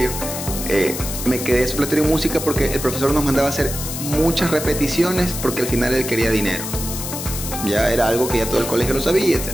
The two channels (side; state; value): left; noise; hiss, 6 dB below the sound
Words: Me quedé supletorio en música porque el profesor nos mandaba a hacer muchas repeticiones porque al final él quería dinero. Ya era algo que ya todo el colegio lo sabía, etc.